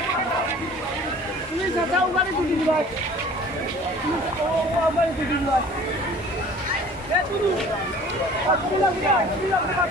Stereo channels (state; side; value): normal; both; correlation 0.48